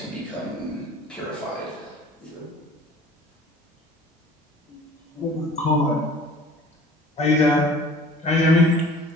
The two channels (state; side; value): normal; both; correlation 0.47